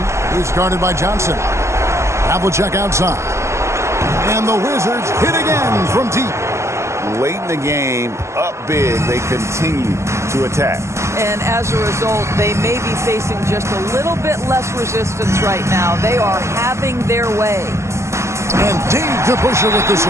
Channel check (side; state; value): left; late; 0.13 ms